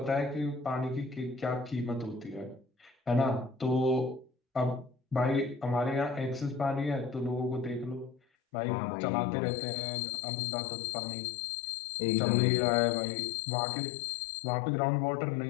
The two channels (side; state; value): right; drops out; at 8.2 s